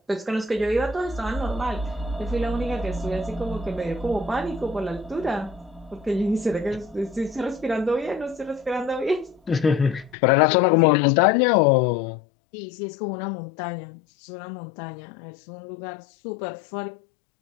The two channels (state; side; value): drops out; right; at 10.2 s